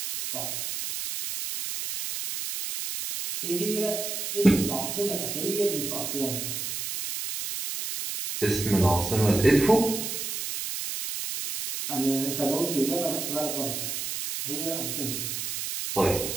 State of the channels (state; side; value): noise; right; hiss, 4 dB below the sound